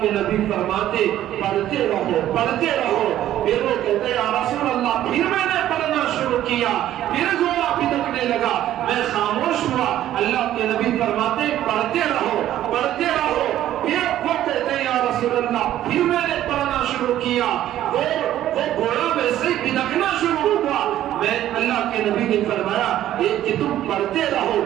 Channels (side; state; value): left; quieter; 12.6 dB